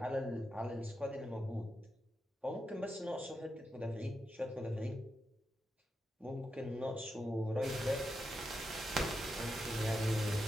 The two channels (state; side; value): normal; both; correlation 0.86